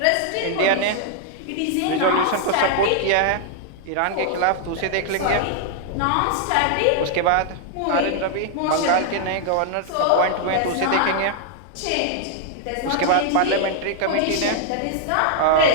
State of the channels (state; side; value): different; both; correlation 0.00